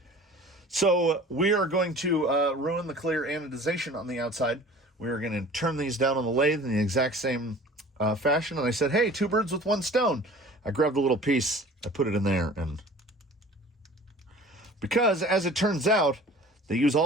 So we are going to ruin the clear anodization on the outside. We are going to turn these down on the lathe in the exact same fashion. And I said, hey, 2 birds with 1 stone. I grabbed a little piece, I put it in there, and because as it turns out, they use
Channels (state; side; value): normal; both; correlation 0.45